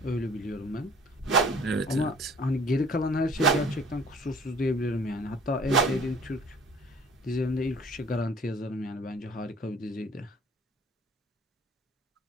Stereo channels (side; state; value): both; normal; correlation 0.50